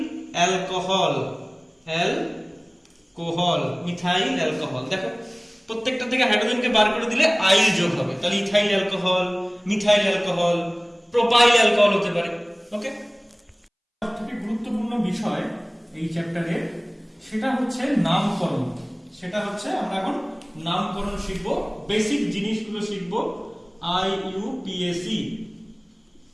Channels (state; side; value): identical; both; correlation 1.00